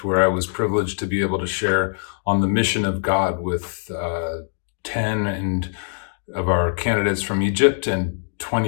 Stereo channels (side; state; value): right; silent; digital silence